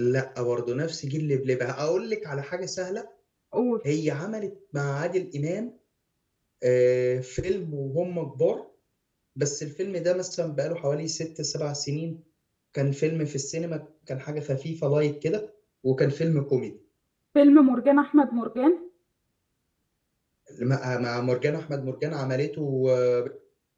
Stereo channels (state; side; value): identical; both; correlation 1.00